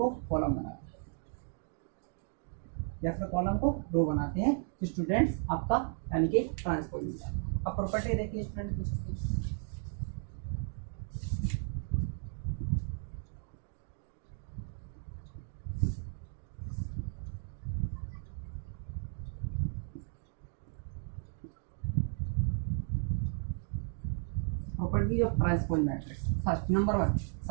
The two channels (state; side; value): silent; left; 55 dB below the other